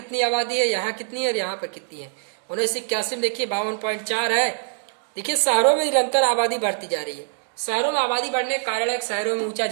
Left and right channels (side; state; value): left; silent; digital silence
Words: आबादी है, यहाँ कितनी है और यहाँ पर कितनी है। 1981 में देखिए 52.4 है। देखिए शहरों में निरंतर आबादी बढ़ती जा रही है। शहरों में आबादी बढ़ने के कारण है, शहरों में ऊंचा